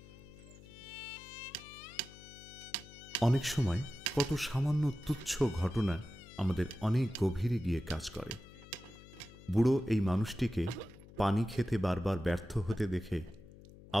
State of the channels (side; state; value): left; noise; hum, 19 dB below the sound